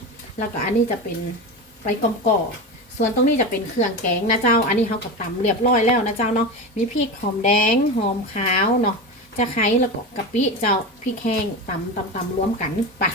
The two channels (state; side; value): normal; both; correlation 0.23